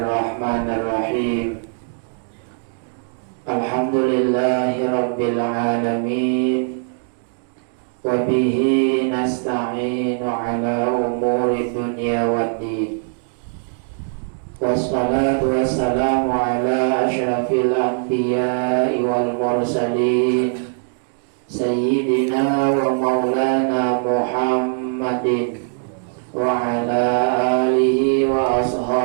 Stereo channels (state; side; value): silent; left; digital silence